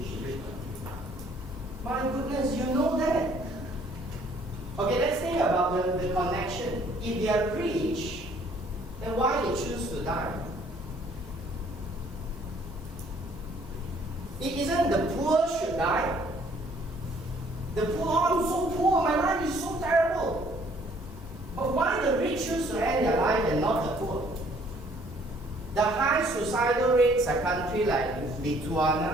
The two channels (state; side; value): normal; both; correlation 0.61